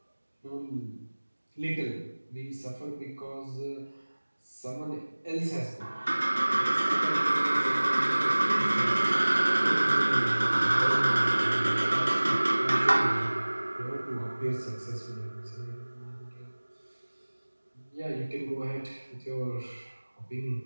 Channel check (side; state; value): both; inverted; correlation -1.00